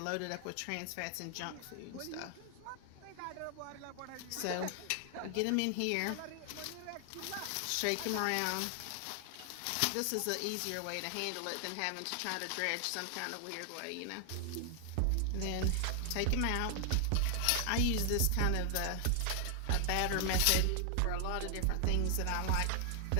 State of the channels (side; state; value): both; different; correlation 0.00